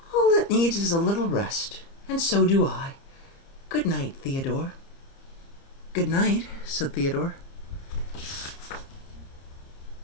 All it needs is a little rest, and so do I. Good night, Theodore. Good night, said Theodore.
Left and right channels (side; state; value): right; late; 30 ms